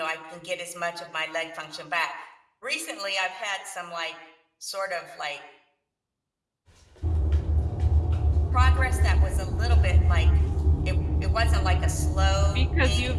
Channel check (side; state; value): both; identical; correlation 1.00